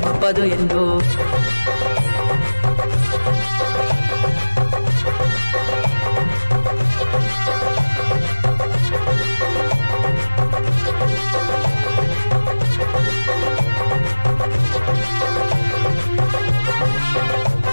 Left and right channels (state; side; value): inverted; both; correlation -1.00